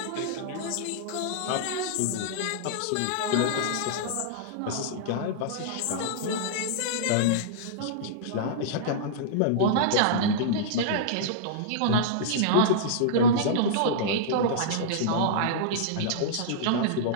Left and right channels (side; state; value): both; different; correlation -0.02